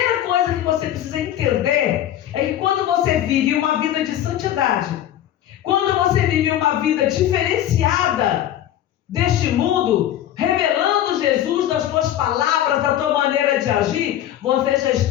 coisa que você precisa entender é que quando você vive uma vida de santidade, quando você vive uma vida diferenciada deste mundo, revelando Jesus nas tuas palavras, da tua maneira de agir, você já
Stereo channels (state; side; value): quieter; right; 11.9 dB